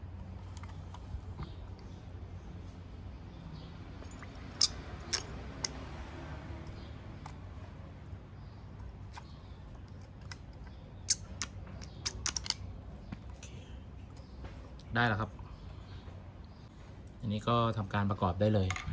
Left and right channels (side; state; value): both; identical; correlation 1.00